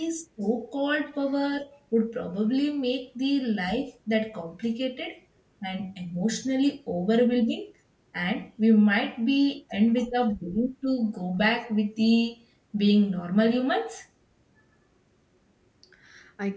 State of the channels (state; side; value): identical; both; correlation 1.00